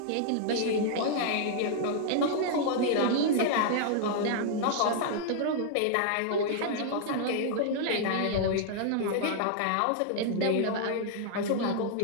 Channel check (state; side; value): different; both; correlation 0.00